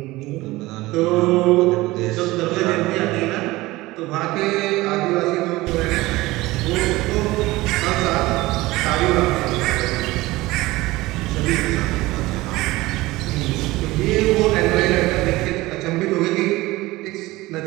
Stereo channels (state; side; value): quieter; left; 19.4 dB